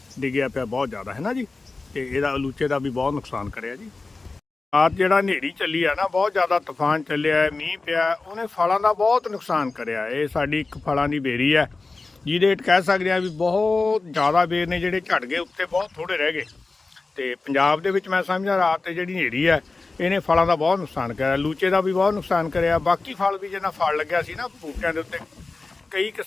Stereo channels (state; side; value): quieter; right; 3.7 dB